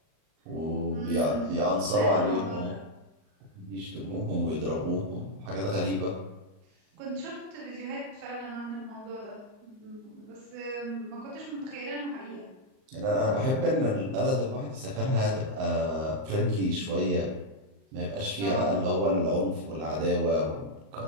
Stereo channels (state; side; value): late; left; 38 ms